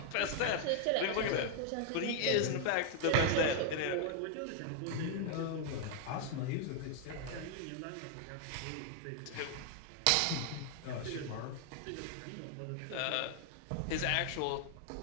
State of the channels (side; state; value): both; different; correlation 0.00